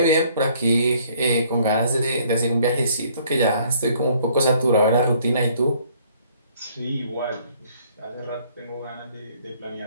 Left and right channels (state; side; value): inverted; both; correlation -0.61